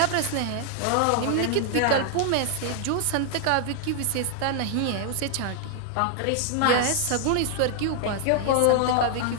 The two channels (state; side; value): different; both; correlation 0.00